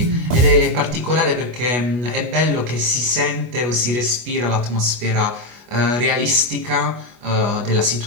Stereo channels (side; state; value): left; late; 25 ms